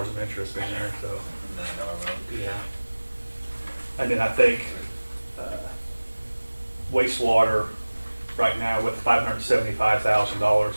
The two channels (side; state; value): both; inverted; correlation -1.00